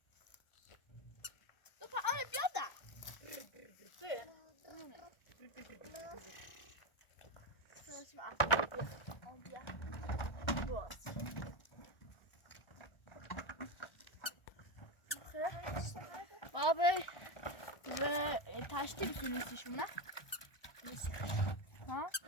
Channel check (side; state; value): right; late; 1.4 ms